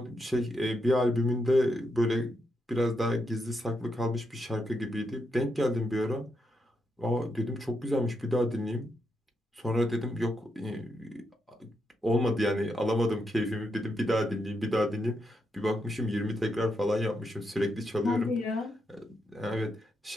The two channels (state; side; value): normal; both; correlation 0.82